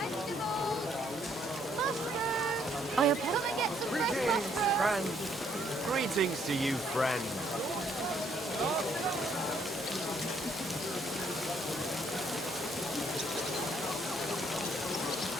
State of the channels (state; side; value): normal; both; correlation 0.68